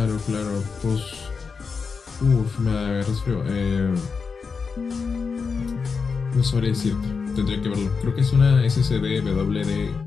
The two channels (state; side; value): quieter; right; 5.2 dB